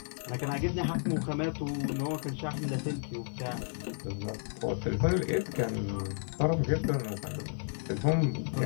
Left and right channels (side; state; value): right; silent; 56 dB below the other